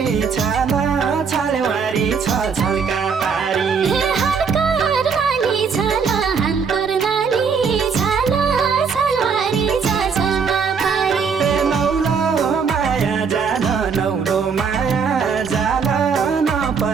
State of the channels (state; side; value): quieter; left; 5.9 dB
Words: छाला छालवारी छ छल्का पारी हनकर नाली छाला हनकर नाली छाला छालवारी छ छल्का पारी नौलो माया जान नौलो माया जान